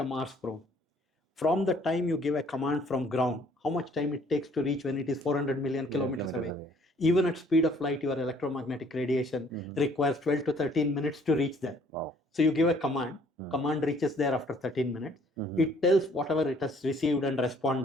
Mars probe, from the time you give a command from ground, how much time it takes to reach when it is 400 million kilometers away. Even at speed of light, your electromagnetic radiation requires 12 to 13 minutes to reach there. Wow. So you give a command, command reaches there after 13 minutes. It tells whatever it has received and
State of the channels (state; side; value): normal; both; correlation 0.60